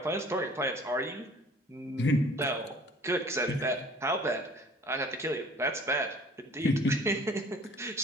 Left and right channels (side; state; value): both; normal; correlation 0.50